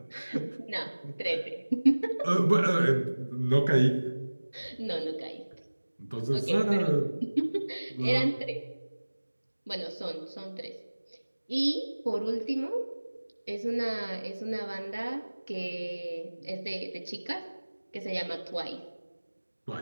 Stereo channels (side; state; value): both; inverted; correlation -1.00